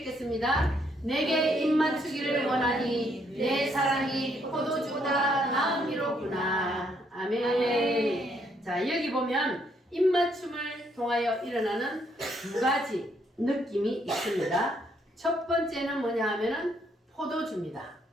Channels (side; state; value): both; normal; correlation 0.71